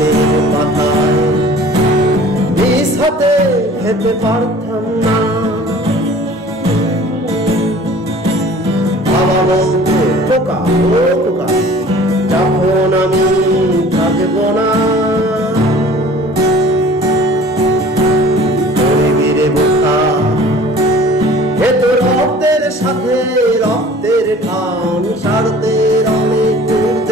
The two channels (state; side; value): normal; both; correlation 0.47